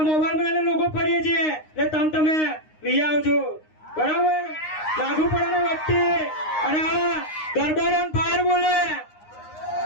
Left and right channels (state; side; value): late; right; 9.7 ms